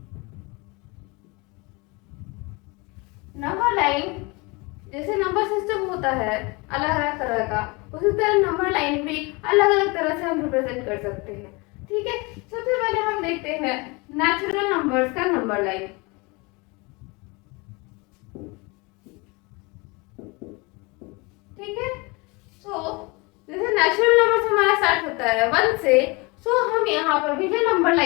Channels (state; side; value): quieter; right; 27.0 dB